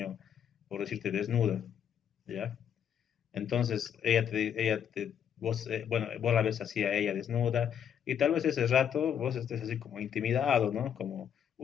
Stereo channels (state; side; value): quieter; right; 8.7 dB